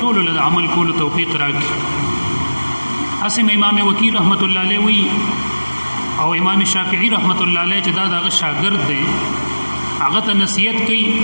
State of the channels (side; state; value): both; inverted; correlation -1.00